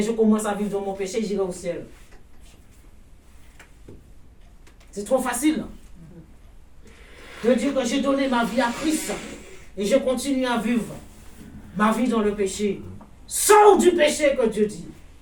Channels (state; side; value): identical; both; correlation 1.00